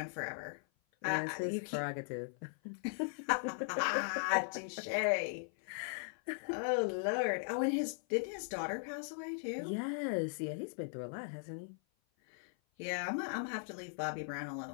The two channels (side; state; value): right; silent; 52 dB below the other